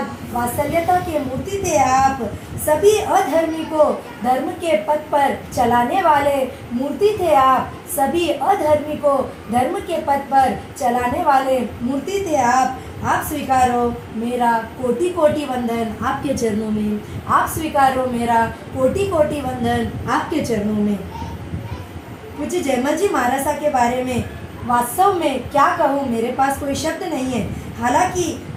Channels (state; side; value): identical; both; correlation 1.00